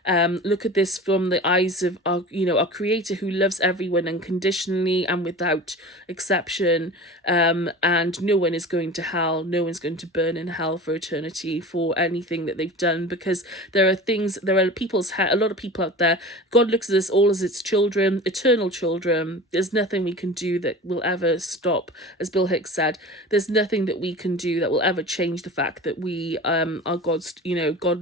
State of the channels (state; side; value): normal; both; correlation 0.36